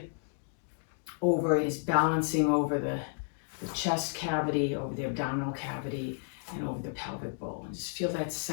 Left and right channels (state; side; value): silent; right; digital silence